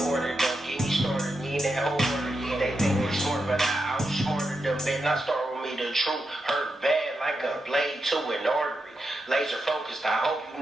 order, don't get me started, need that order, they think we smart, but I outsmarted them, better not start with me, the truth hurt bad like a blade to an artery, laser focused, I hope you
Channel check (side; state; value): both; normal; correlation 0.87